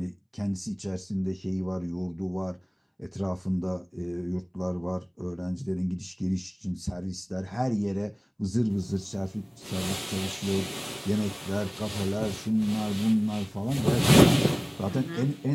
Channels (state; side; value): identical; both; correlation 1.00